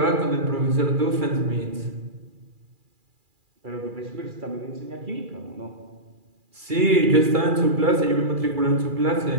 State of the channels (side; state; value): left; late; 2.4 ms